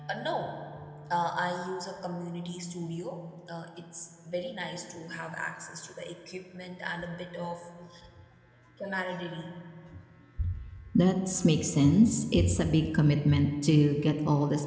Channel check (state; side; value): identical; both; correlation 1.00